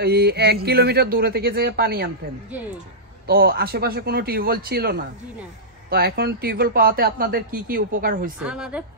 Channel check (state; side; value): normal; both; correlation -0.14